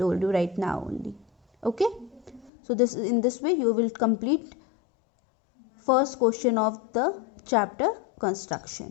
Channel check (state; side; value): drops out; right; at 2.5 s